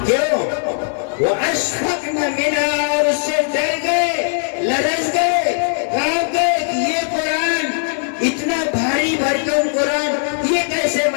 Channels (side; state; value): right; silent; 62 dB below the other